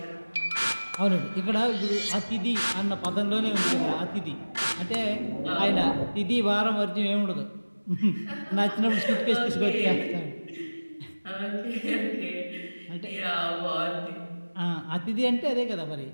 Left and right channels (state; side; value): inverted; both; correlation -1.00